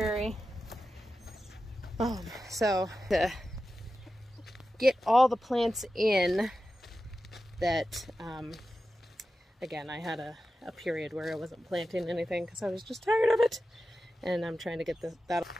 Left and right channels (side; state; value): both; normal; correlation 0.93